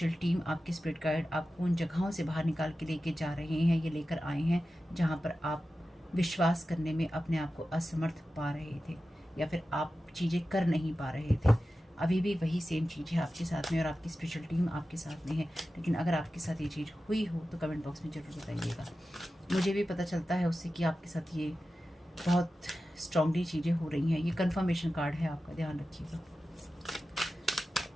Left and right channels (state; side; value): normal; both; correlation 0.93